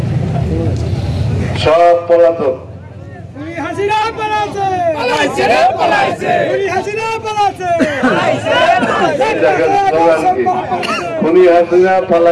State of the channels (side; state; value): both; identical; correlation 1.00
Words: সব পলাতক। খুনি হাসিনা